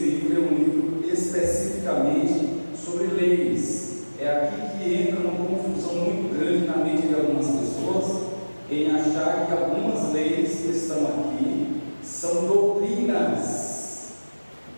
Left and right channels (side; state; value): both; inverted; correlation -1.00